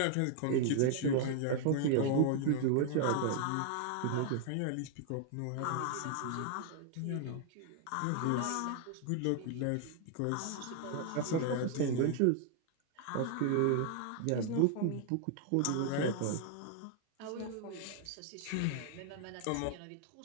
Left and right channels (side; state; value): both; different; correlation 0.00